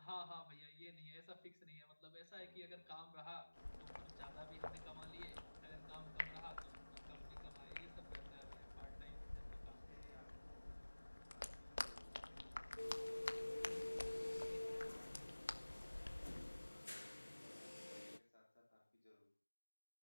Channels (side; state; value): both; inverted; correlation -1.00